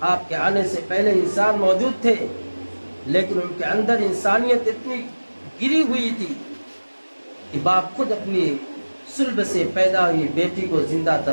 آپ کے آنے سے پہلے انسان موجود تھے، لیکن ان کے اندر انسانیت اتنی گری ہوئی تھی کہ باپ خود اپنی صلب سے پیدا ہوئی بیٹی کو زندہ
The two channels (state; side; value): inverted; both; correlation -1.00